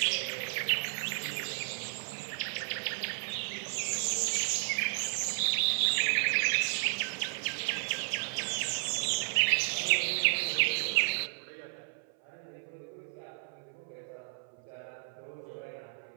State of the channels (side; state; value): left; silent; 56 dB below the other